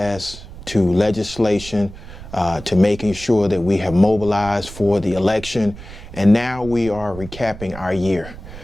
to legislation, to making sure that we have mobilized for the election. And now we are recapping our year.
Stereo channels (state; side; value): noise; right; rumble, 14 dB below the sound